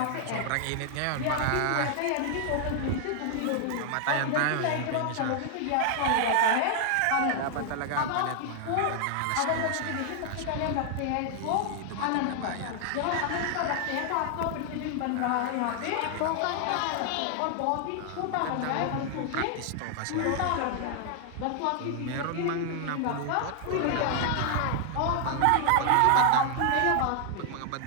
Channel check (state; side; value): different; both; correlation 0.00